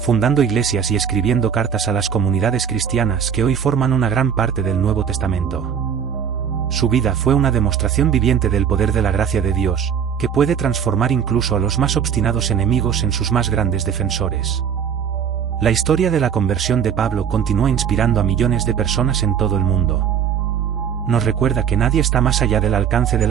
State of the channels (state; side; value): quieter; left; 8.0 dB